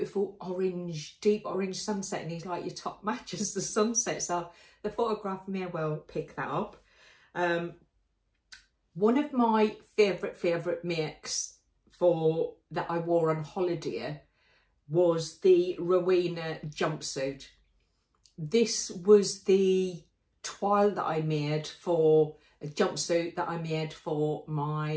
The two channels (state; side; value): identical; both; correlation 1.00